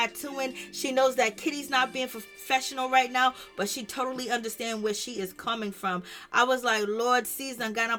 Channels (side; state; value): both; identical; correlation 1.00